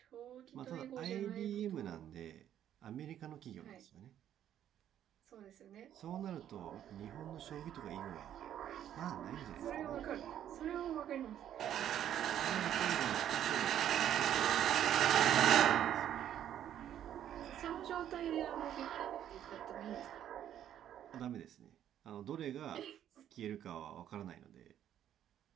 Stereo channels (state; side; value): quieter; left; 10.7 dB